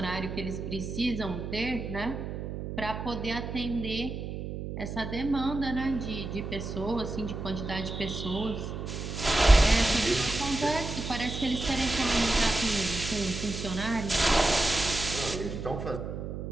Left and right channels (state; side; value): noise; right; hum, 6 dB below the sound